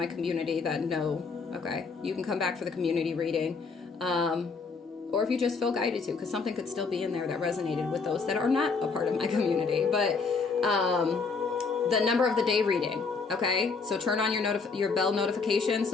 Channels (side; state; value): right; quieter; 4.7 dB